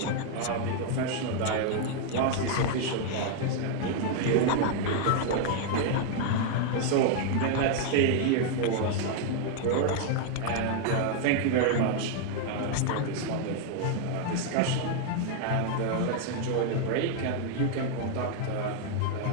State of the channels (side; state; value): both; different; correlation 0.00